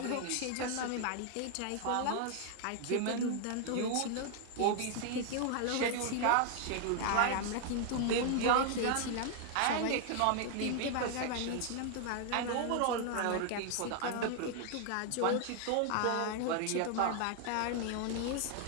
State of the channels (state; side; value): different; both; correlation 0.00